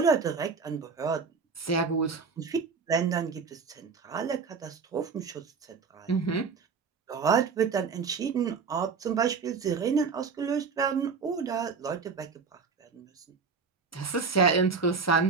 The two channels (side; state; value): left; quieter; 5.3 dB